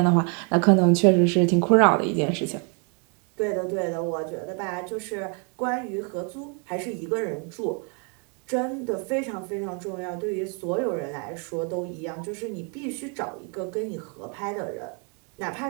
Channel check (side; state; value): left; quieter; 37.5 dB